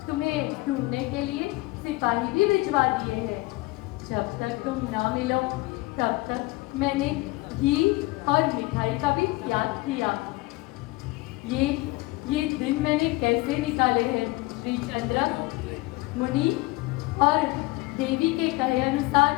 तुम्हें ढूंढने के लिए सिपाही भी भिजवा दिए हैं। जब तक तुम ना मिलो तब तक मैंने घी और मिठाई का भी त्याग किया। ये दिन मैंने कैसे निकाले हैं श्री चंद्र? मुनि और देवी के कहे अनुसार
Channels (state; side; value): quieter; right; 21.5 dB